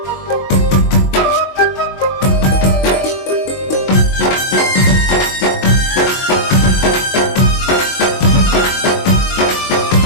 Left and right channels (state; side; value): late; right; 22 ms